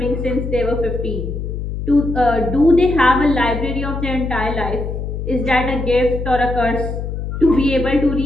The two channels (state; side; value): noise; left; hum, 5 dB below the sound